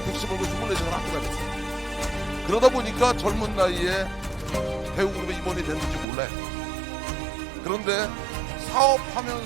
택시 몰고 24시간 학교 다녔어요. 그러다 보니까 젊은 나이에 배우그룹에 임원이 됐는지 몰라요. 그런데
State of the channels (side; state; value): left; drops out; at 6.1 s